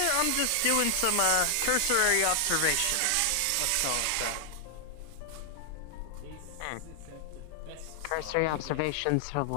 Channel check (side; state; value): both; different; correlation 0.00